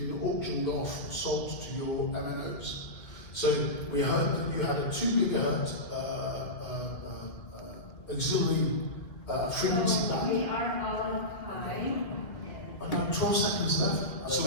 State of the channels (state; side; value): late; right; 2.3 ms